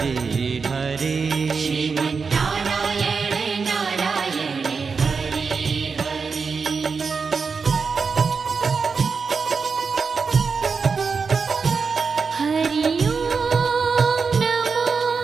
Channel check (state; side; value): quieter; left; 5.2 dB